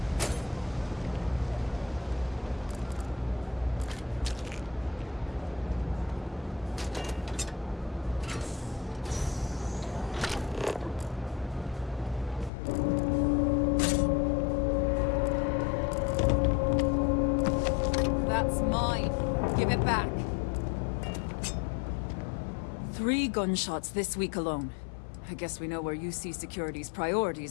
Back. 3 gunshots this week alone. I guess we know where UC Security's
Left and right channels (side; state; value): right; drops out; at 12.5 s